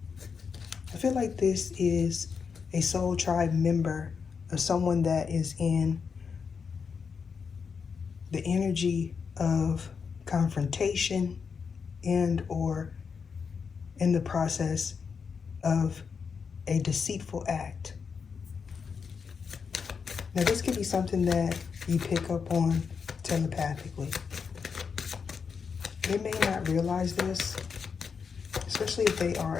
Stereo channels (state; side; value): quieter; right; 5.9 dB